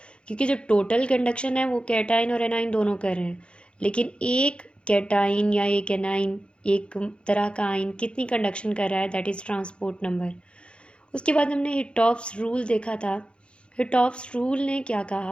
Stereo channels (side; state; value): right; late; 0.057 ms